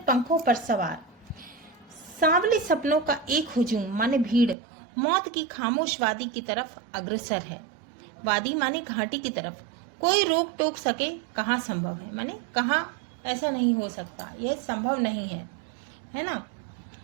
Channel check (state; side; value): drops out; left; at 4.5 s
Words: पंखों पर सवार सांवले सपनों का एक हुजूम माने भीड़ मौत की खामोश वादी की तरफ अग्रसर है। वादी माने घाटी की तरफ। कोई रोक टोक सके कहाँ संभव है, माने कहाँ ऐसा नहीं हो सकता, यह संभव नहीं है ना।